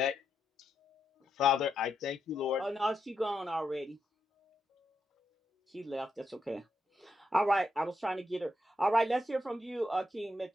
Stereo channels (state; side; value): normal; both; correlation 0.82